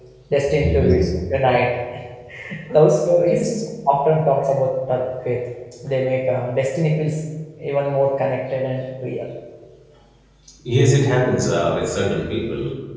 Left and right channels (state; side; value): identical; both; correlation 1.00